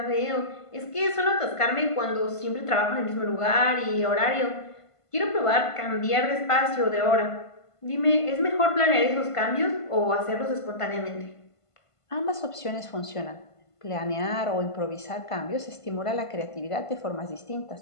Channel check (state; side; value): late; right; 1.5 ms